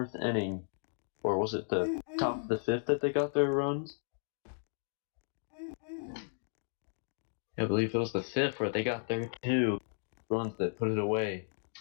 inning, or was it the top of the 5th that they got their runs? I believe it was the 5th where they got their 2 runs that put it away.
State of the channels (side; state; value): right; silent; digital silence